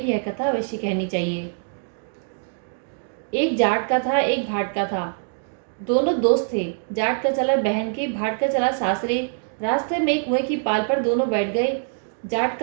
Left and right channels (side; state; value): left; silent; digital silence